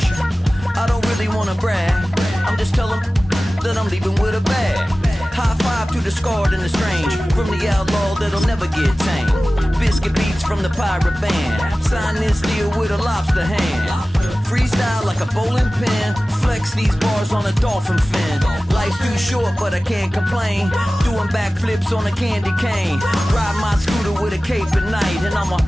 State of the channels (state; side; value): normal; both; correlation 0.97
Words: I don't really wanna brag, I'm just telling that I'm leaving with a bag. High five to the scarred and the strange, from the outlaw that'll never get tamed. Biscuit beats from the pirate band, sign this deal with a lobster hand. Freestyle like a bowling pin, flex these bars on a dolphin fin. Life's too short but I can't complain, doing backflips on a candy cane. Ride my scooter with a cape at night, and I'ma